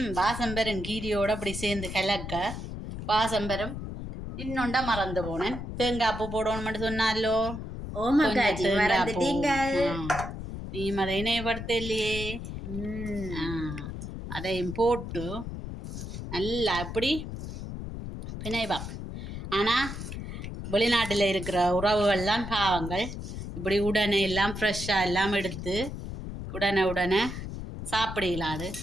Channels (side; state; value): left; noise; rumble, 7 dB below the sound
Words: வாசம் வரும். கீரையோட அப்படி சேர்ந்து கலக்க வாசம் வரும். இன்னொண்டா மறந்து போனேன். தேங்காய் பூ போடணும்னு சொன்னாலோ. நீ அதை இணையப்படுத்த இல்லையே. அதையும் போட்டு நல்லா அப்படி பிணைவா. ஆனால் வெளிநாட்டில் இருக்கிற உறவுகள்லாம் பாவங்கள் இப்படி உடனே எல்லாம் ஃப்ரெஷ்ஷாக எல்லாம் எடுத்து உடனே சாப்பிடலாது.